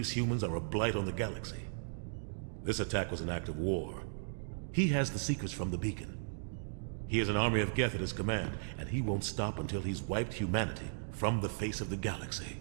humans are a blight on the galaxy. This attack was an act of war. He has the secrets from the beacon. He has an army of Geth at his command, and he won't stop until he's wiped humanity from the face of the galaxy.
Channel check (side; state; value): left; silent; digital silence